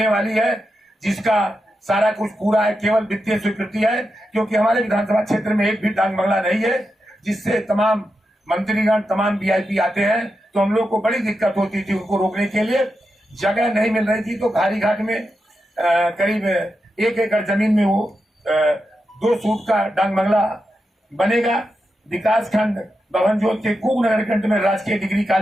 वाली है, जिसका सारा कुछ पूरा है, केवल वित्तीय स्वीकृति है, क्योंकि हमारे विधानसभा क्षेत्र में एक भी डांग बंगला नहीं है, जिससे तमाम मंत्रीगण, तमाम वीआईपी आते हैं, तो हम लोग को बड़ी दिक्कत होती थी उनको रोकने के लिए, जगह नहीं मिल रही थी। तो घारी घाट में करीब 1 एकड़ जमीन में वो 2 सूट का डांग बंगला बनेगा। विकास खंड बभनजोत के कुग नगर कंठ में राजकीय डिग्री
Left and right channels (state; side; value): normal; both; correlation 0.88